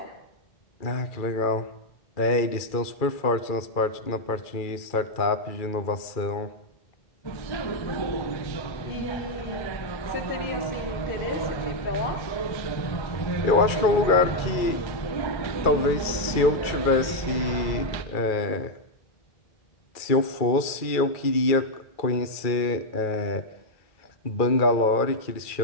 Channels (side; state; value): right; late; 2.3 ms